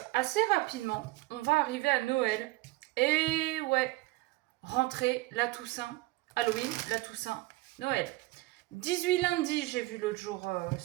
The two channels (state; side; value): quieter; left; 20.2 dB